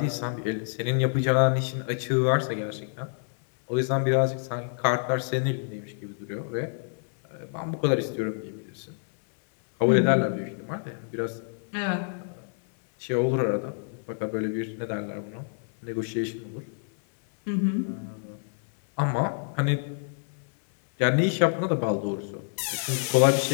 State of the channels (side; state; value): right; silent; digital silence